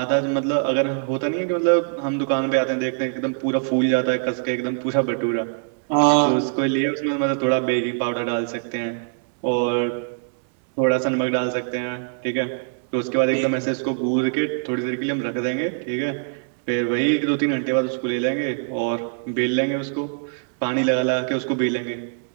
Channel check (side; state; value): left; silent; digital silence